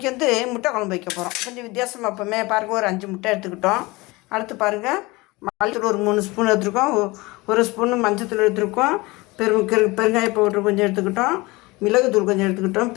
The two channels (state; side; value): quieter; right; 22.8 dB